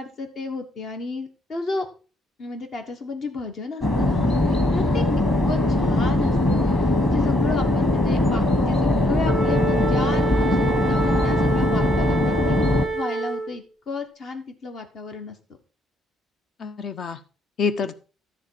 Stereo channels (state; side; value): normal; both; correlation 0.71